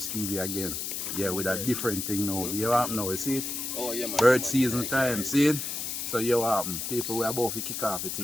TV again. Yeah, with a different thing now. You happen now, you see it? Oh, yeah, man. Bird season time, see it? So you happen. People, we are about to kick off the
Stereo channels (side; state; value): left; noise; hiss, 4 dB below the sound